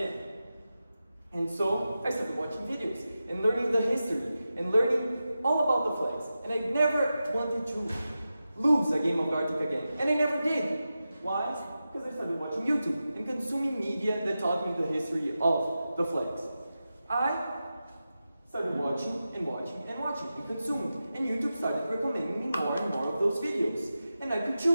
And so I started watching videos and learning the history and learning all about the flags. And I never wanted to lose a game of Gartic again. And I never did. Why? Because I started watching YouTube and consuming media that taught me the history of the flags. I started watching and consuming. And YouTube started recommending me more and more of those videos. And I could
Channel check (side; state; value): both; inverted; correlation -0.92